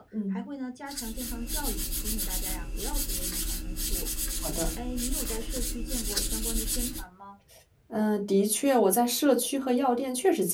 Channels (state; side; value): identical; both; correlation 1.00